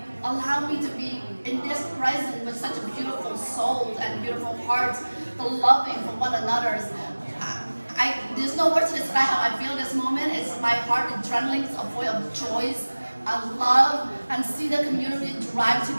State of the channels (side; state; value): both; inverted; correlation -1.00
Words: allowed me to be in this present with such a beautiful soul and beautiful heart, the loving for one another. There's no words to describe how I feel this moment. It's my heart adrenaline, it's a voice of joy and love, and see the community drive